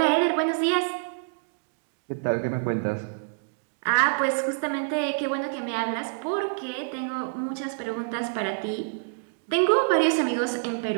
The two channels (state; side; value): silent; left; digital silence